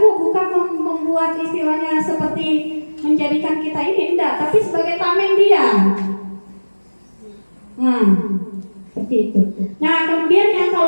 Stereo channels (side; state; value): both; inverted; correlation -1.00